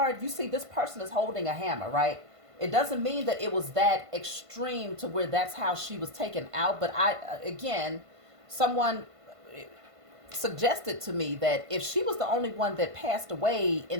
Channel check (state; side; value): late; left; 1.5 ms